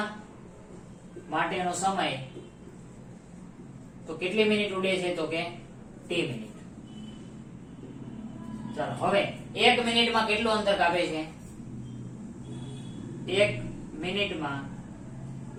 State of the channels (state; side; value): identical; both; correlation 1.00